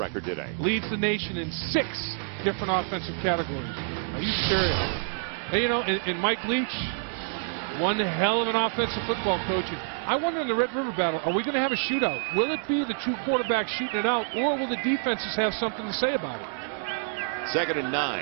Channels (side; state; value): left; silent; digital silence